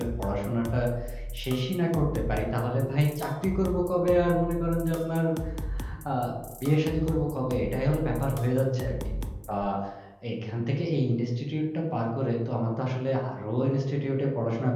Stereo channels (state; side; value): identical; both; correlation 1.00